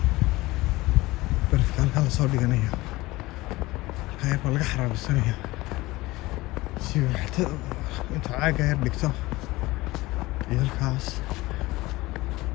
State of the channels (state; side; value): quieter; right; 19.9 dB